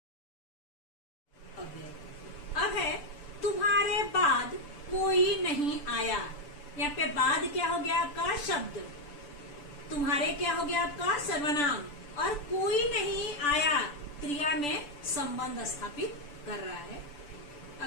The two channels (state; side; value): late; right; 6.9 ms